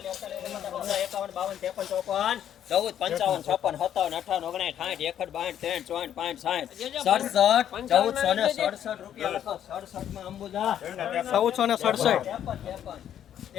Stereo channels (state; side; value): quieter; right; 10.2 dB